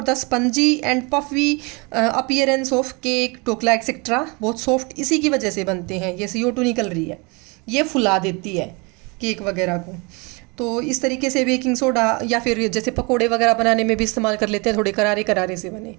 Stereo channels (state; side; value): quieter; left; 28.9 dB